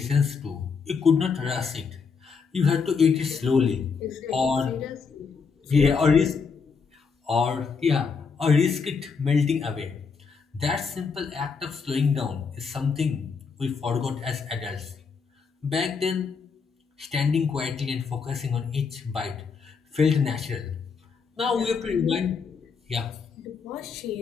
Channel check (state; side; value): quieter; right; 5.4 dB